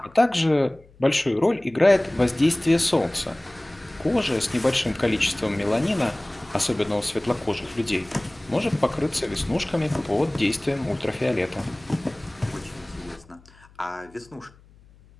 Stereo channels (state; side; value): noise; left; hum, 27 dB below the sound